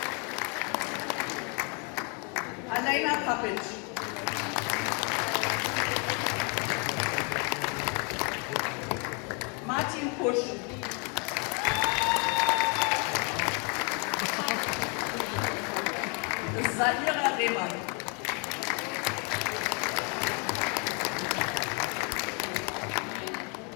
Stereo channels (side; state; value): right; quieter; 35.6 dB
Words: Alena Papic. Martin Pusch. Saira Rehmann.